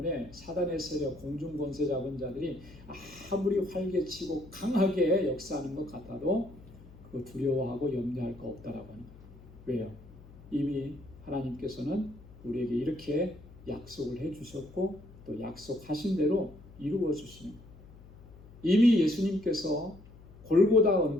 사단의 세력, 공중 권세 잡은 자들이 아무리 활개치고 강하게 역사하는 것 같아도 그거 두려워하고 염려할 거 없다라고 하는 거예요. 왜요? 이미 하나님께서는 우리에게 이렇게 약속을 해주셨고 또 약속하신 대로 이루어 주시는 거예요. 이미 예수님께서 골고다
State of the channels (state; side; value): noise; left; hum, 20 dB below the sound